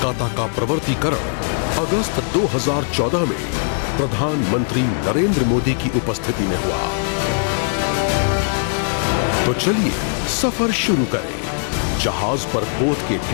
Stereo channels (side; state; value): right; silent; 66 dB below the other